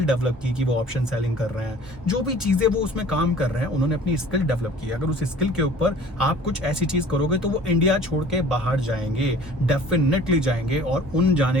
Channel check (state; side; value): normal; both; correlation 0.48